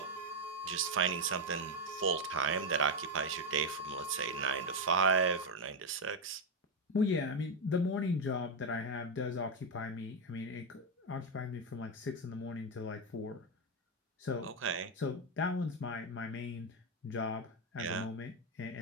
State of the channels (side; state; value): both; normal; correlation 0.05